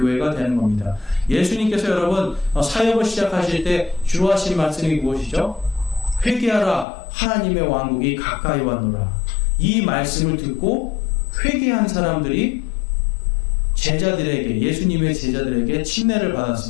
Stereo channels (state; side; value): drops out; right; at 6.9 s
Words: 되는 겁니다. 예수님께서 여러분 사역을 시작하실 때 주로 하신 말씀이 무엇이죠? 회개하라, 하나님의 왕국이 가까이 왔노라. 이 말씀을 듣고 회개한 사람들이 제자들에게, 예수님의 제자들에게 침례를